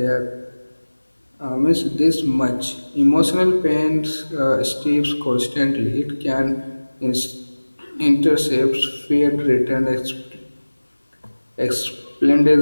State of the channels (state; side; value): inverted; both; correlation -1.00